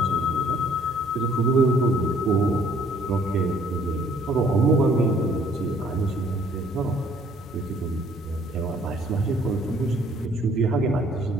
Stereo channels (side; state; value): both; normal; correlation 0.60